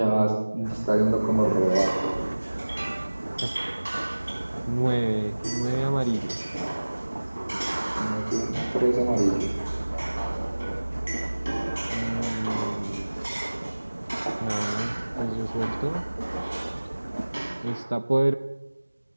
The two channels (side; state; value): both; inverted; correlation -1.00